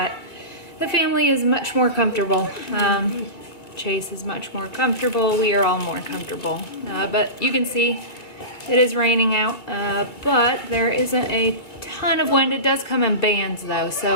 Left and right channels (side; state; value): right; late; 2.1 ms